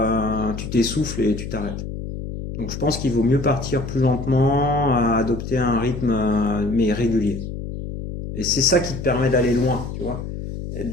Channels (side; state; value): left; noise; hum, 7 dB below the sound